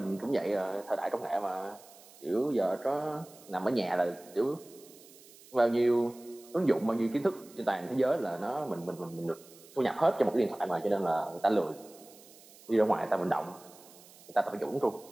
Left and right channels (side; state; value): right; noise; hiss, 22 dB below the sound